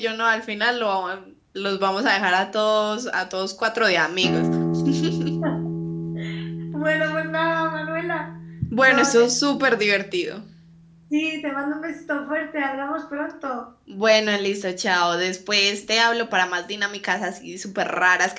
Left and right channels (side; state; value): both; identical; correlation 1.00